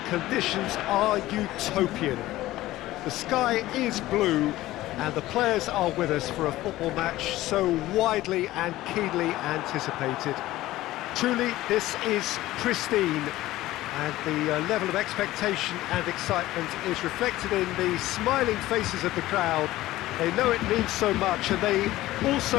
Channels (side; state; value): right; quieter; 16.3 dB